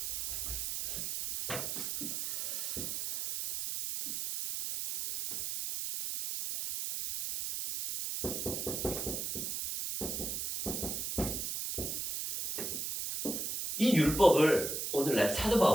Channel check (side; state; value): right; noise; hiss, 3 dB below the sound